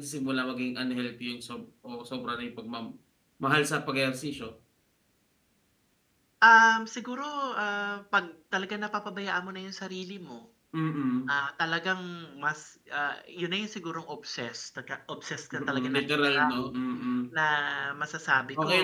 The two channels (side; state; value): both; identical; correlation 1.00